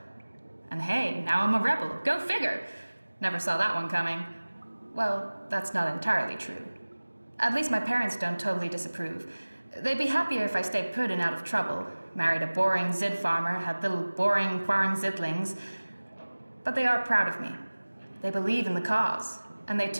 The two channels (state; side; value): inverted; both; correlation -1.00